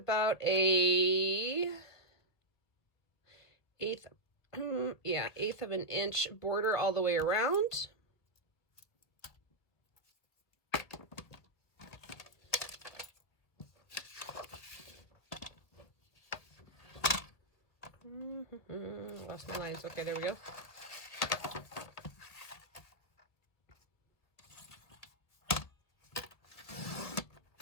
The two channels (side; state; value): right; late; 2.0 ms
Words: a eighth of an inch border all the way around. Lost my lines. Okay, there we go.